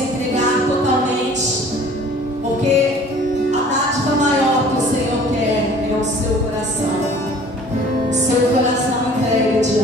totalmente, porque a dádiva maior que o Senhor quer é o seu coração, entregue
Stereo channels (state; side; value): normal; both; correlation 0.50